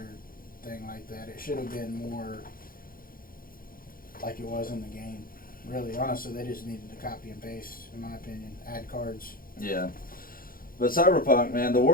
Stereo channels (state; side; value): late; right; 0.41 ms